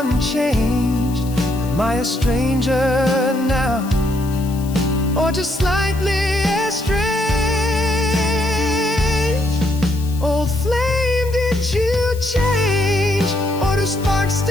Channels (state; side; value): noise; left; hiss, 18 dB below the sound